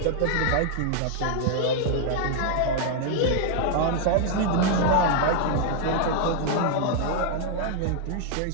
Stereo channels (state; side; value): different; both; correlation 0.00